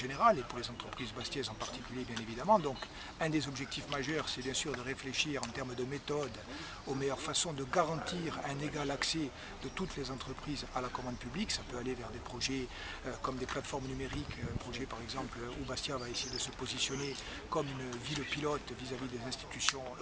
et pour les entreprises bastiaises en particulier, bien évidemment. Donc un des objectifs majeurs, c'est bien sûr de réfléchir en termes de méthode aux meilleures façons de garantir un égal accès de toutes les entreprises à la commande publique. Ça peut aller vers des projets comme des plateformes numériques, un projet par exemple où Bastia va essayer de se positionner comme une ville pilote vis-à-vis des institutions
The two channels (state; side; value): identical; both; correlation 1.00